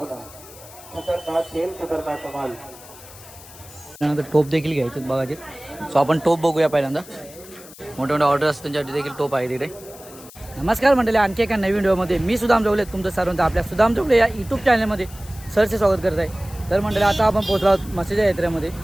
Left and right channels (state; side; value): noise; left; hiss, 19 dB below the sound